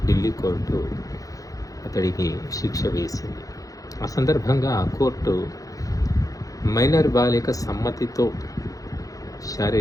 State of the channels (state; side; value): late; right; 0.17 ms